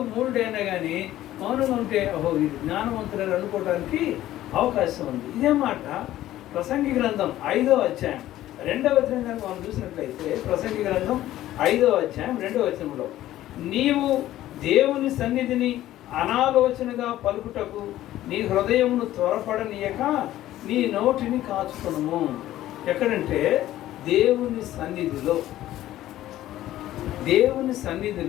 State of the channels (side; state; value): right; quieter; 14.1 dB